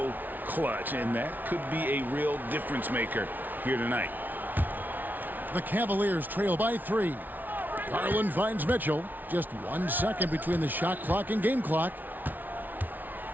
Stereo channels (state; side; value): late; left; 0.083 ms